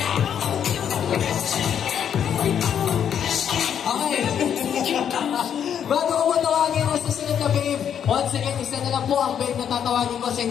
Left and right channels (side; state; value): right; quieter; 8.7 dB